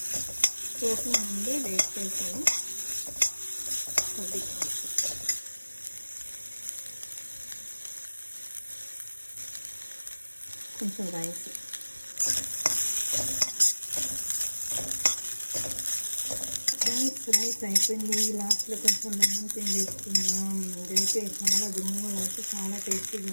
సోప్లో నుండి వేస్ట్ చేసాను. 10 గ్రామ్స్, కొంచెం రైస్, రైస్ అయిపోయింది. లాస్ట్లో కొంచెం లెమన్ పిండి వేసుకుందాం. ఇదైతే చాలా గుమ్మగా అయితే చాలా టేస్టీగా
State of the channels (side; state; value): both; inverted; correlation -1.00